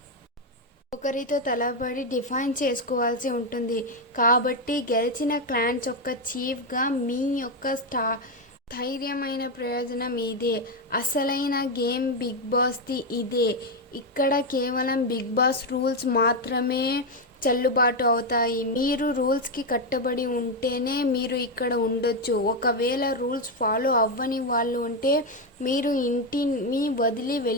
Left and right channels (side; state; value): both; normal; correlation 0.06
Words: ఒకరితో తలబడి డిఫైన్ చేసుకోవాల్సి ఉంటుంది. కాబట్టి గెలిచిన క్లాన్స్ యొక్క చీఫ్గా మీ యొక్క ధైర్యమైన ప్రయోజనం ఇదే. అసలైన గేమ్ బిగ్ బాస్ది ఇదే. ఇక్కడ కేవలం బిగ్ బాస్ రూల్స్ మాత్రమే చెల్లుబాటు అవుతాయి. మీరు రూల్స్కి కట్టుబడి ఉంటేనే మీరు ఇక్కడ ఉండొచ్చు. ఒకవేళ రూల్స్ ఫాలో అవ్వని వాళ్ళు ఉంటే మీరు ఇంటిని వదిలి